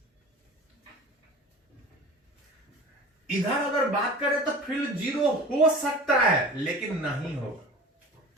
इधर अगर बात करें तो फील्ड जीरो हो सकता है लेकिन नहीं होगा।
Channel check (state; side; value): normal; both; correlation 0.37